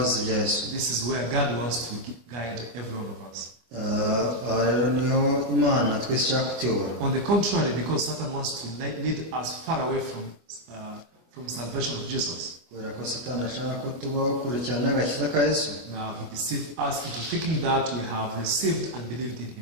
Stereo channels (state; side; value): late; left; 25 ms